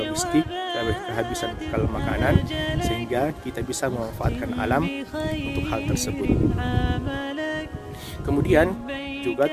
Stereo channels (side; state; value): both; identical; correlation 1.00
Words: logistik, kehabisan bekal makanan, sehingga kita bisa memanfaatkan alam untuk hal tersebut. Kemudian juga